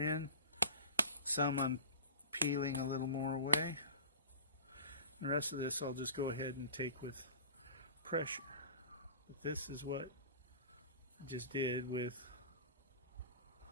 some I'm peeling a little more away. The rest of this I'll just go ahead and take with pressure. But this is what I just did with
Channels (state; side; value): inverted; both; correlation -0.37